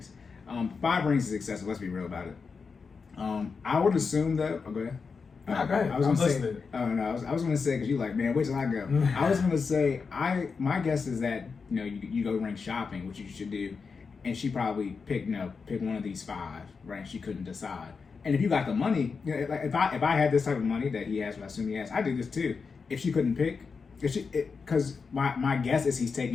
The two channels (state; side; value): quieter; right; 5.1 dB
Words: 5 rings is excessive. Let's be real about it. I would assume that. Oh, go ahead. Go ahead. I was gonna say. Oh no, I was gonna say because you like, man, wait till I go. I was gonna say my guess is that you go ring shopping, which you should do, and she probably picked one of these 5, right? She couldn't decide. And if you got the money, like if I had this type of money that he has, what I assume he has, I do this too. If she couldn't pick, because my guess is he's